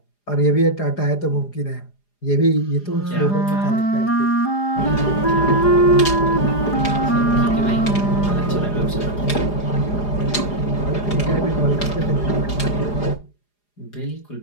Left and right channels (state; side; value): late; right; 4.9 ms